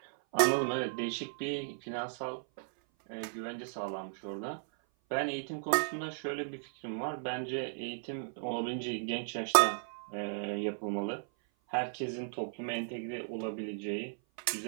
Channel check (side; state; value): left; silent; 54 dB below the other